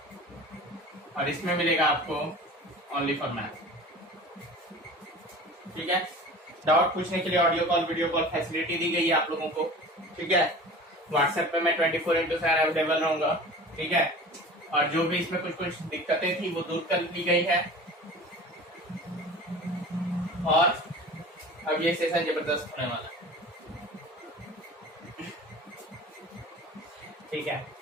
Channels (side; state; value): both; normal; correlation 0.39